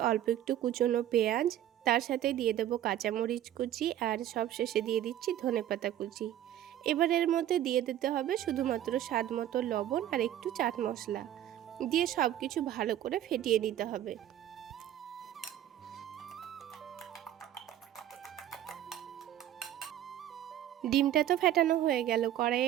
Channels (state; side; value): quieter; left; 11.9 dB